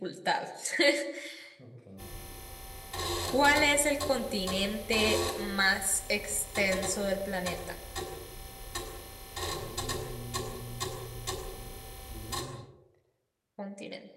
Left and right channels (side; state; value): both; identical; correlation 1.00